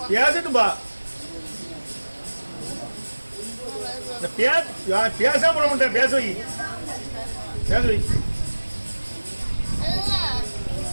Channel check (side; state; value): both; inverted; correlation -1.00